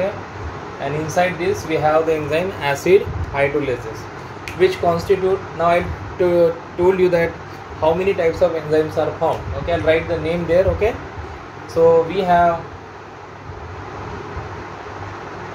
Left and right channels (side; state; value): both; identical; correlation 1.00